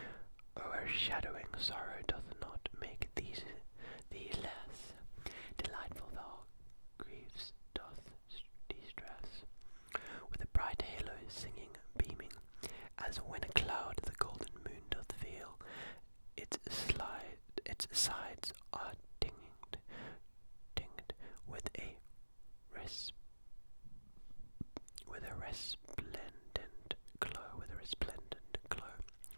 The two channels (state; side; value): inverted; both; correlation -1.00